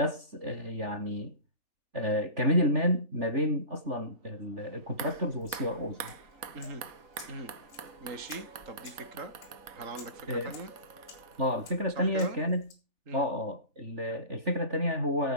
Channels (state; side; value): late; left; 4.1 ms